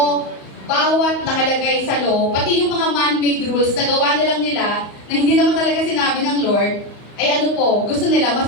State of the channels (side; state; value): right; late; 34 ms